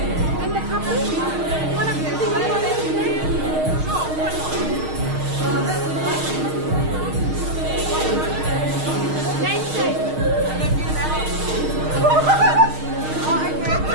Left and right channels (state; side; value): late; left; 6.5 ms